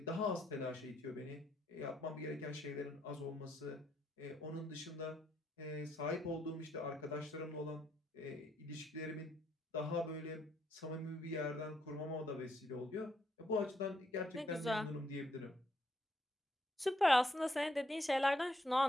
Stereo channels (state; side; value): normal; both; correlation 0.74